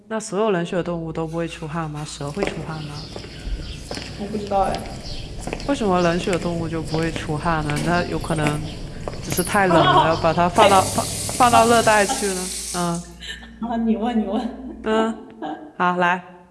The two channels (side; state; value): both; identical; correlation 1.00